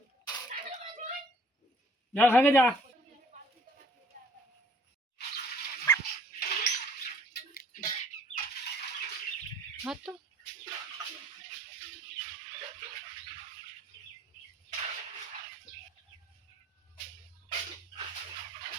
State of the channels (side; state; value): both; normal; correlation 0.56